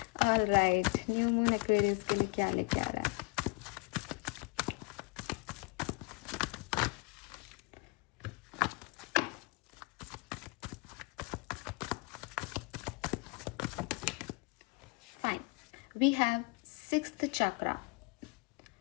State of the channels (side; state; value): right; quieter; 27.6 dB